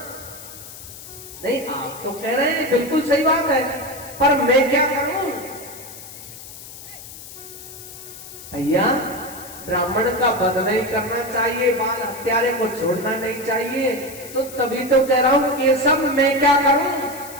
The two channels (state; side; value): noise; left; hiss, 15 dB below the sound